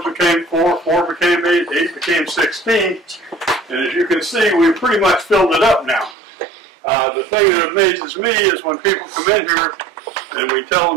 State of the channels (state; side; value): drops out; left; at 6.2 s